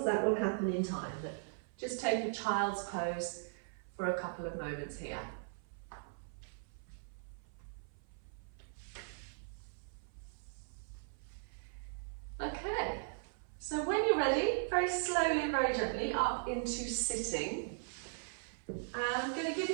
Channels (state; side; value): silent; left; 52 dB below the other